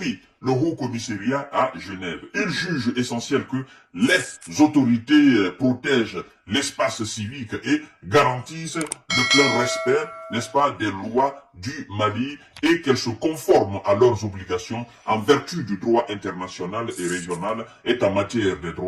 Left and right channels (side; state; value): both; identical; correlation 1.00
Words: le Haut-Commissariat à Genève. Il juge essentiel que les autorités protègent l'espace civique et garantissent le plein respect, n'est-ce pas, des lois du Mali et qu'elles se conforment à leurs obligations en vertu du droit international et régional et en matière des